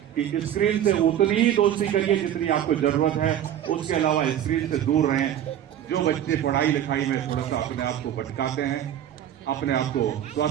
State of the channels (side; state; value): left; quieter; 10.6 dB